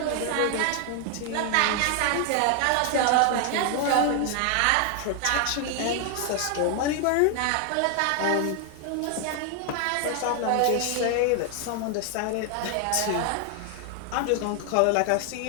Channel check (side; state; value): both; different; correlation 0.00